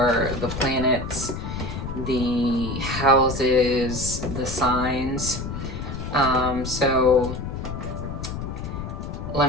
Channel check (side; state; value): left; noise; rumble, 6 dB below the sound